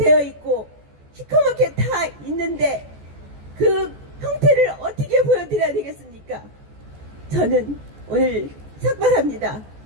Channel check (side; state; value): left; late; 14 ms